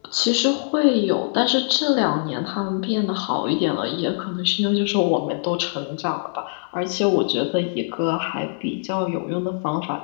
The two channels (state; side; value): silent; right; 64 dB below the other